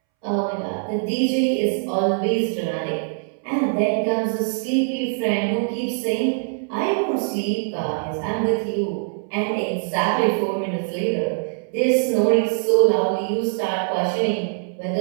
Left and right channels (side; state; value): left; silent; 64 dB below the other